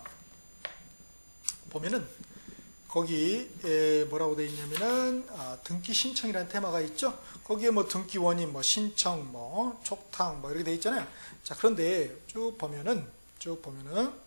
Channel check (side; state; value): both; inverted; correlation -1.00